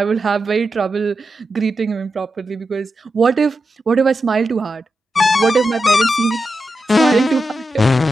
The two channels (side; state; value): both; normal; correlation 0.89